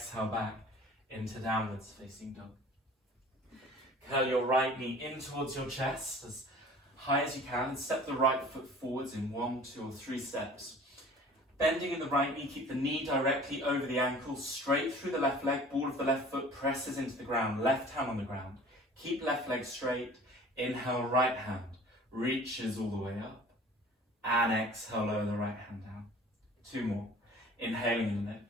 back into downwards facing dog. Curl your right knee in towards your chest as high as you can and step the right foot forwards in 1, 2 or 3 steps. Bending in the right knee, keep the knee directly over the ankle, straight through the left leg, ball of the left foot presses into the ground, left hand on the ground. Keep left leg straight, inhale right hand, reaches all the way up, and exhale, lower the right hand down. 2 more, inhaling and lift,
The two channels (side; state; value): both; normal; correlation 0.46